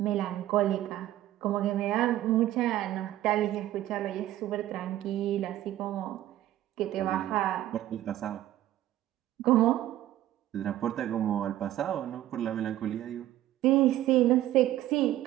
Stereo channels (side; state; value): left; quieter; 13.7 dB